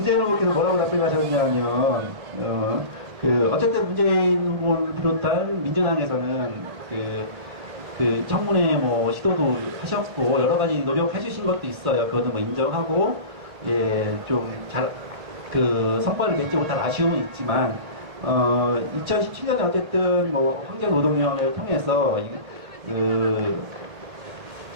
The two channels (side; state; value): left; late; 2.0 ms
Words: 후보께서 뭐라고 답변하셨냐면, 어쨌든 문재인 후보를 비롯한 민주당에서는 그 청문회 시도도 하셨고, 여러 가지 노력해 주신 것도 있어요. 그것도 인정하고, 예, 좀 성과를 맺지 못한 아쉬움은 있지만, 2017년에 어쨌든 환경노동위원회를 통해서